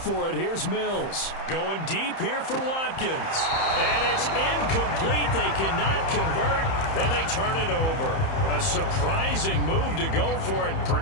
it. Here's Mills. Going deep here for Watkins. And it's incomplete. They cannot convert, and they turn it over. A surprising move to go for it.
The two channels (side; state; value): right; late; 31 ms